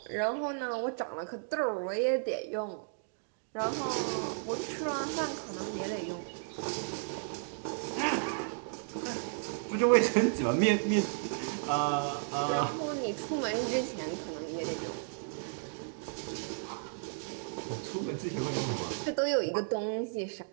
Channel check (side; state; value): left; silent; digital silence